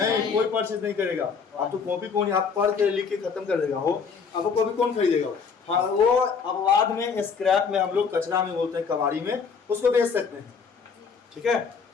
कोई परचेज नहीं करेगा। आप तो कॉपी कौन, आप पढ़ के लिख के खत्म कर देगा हो, आपको कॉपी कौन खरीदेगा? हाँ, वो अब बाद में स्क्रैप में, हम लोग कचरा में बोलते हैं, कबाड़ी में, उसको बेच सकते हैं। ठीक है।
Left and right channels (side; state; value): right; quieter; 5.7 dB